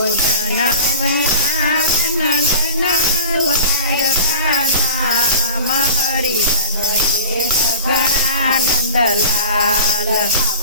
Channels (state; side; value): inverted; both; correlation -0.37